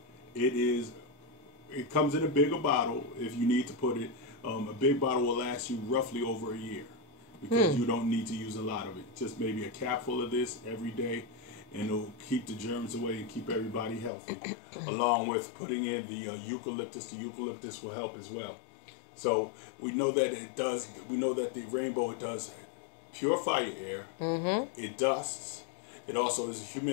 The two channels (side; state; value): right; drops out; at 14.1 s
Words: It comes in a bigger bottle if you need to put it. A big bottle will last you roughly over a year because you don't need to use a lot of it. Just maybe a capful of this every day, and it'll keep the germs away and keep everybody healthy. Along with putting in the eucalyptus. The eucalyptus will help as well. So we know that it does. We know that the Rainbow, it does purify your air. It dusts. It also is a